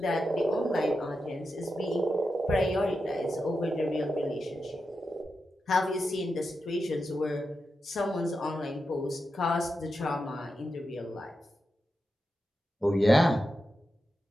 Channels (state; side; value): normal; both; correlation 0.89